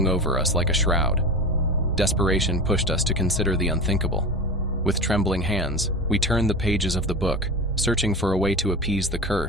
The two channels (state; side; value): normal; both; correlation 0.28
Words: over us like a shroud. Desperation pushed us to consider the unthinkable. With trembling hands, we turned the pages of the book, searching for a way to appease the